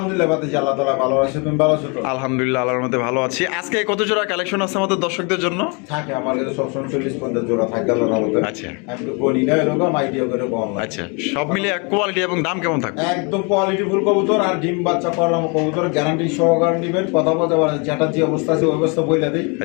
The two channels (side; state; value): right; quieter; 32.5 dB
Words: বাতি আল্লাহ তাআলা ভালো আছে তুমি ভালো আছো তো আলহামদুলিল্লাহ আল্লাহর মধ্যে ভালো আছি আজকে কত জোড়া কালেকশন আছে আমাদের দর্শকদের জন্য থাকে আমার কাছে সবসময় 40-50 জোড়া থাকে আল্লাহর রহমতে আচ্ছা আমি তো বলি না এরকম আইডিয়া করে কম আচ্ছা সব মিলিয়ে কোয়ালিটি এবং দাম কেমন থাকবে একদম কোয়ালিটি ফুল কবুতর আর ডিম বাচ্চা করাম কবুতর গ্যারান্টি সহকারে দিবেন কথা বলতে পারেন যেটা যে অবস্থা আছে ওই অবস্থা বইলা দেই